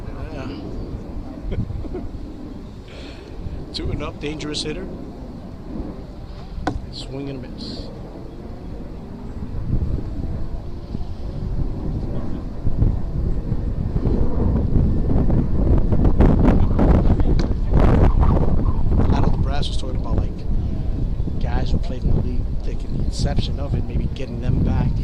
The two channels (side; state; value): both; identical; correlation 1.00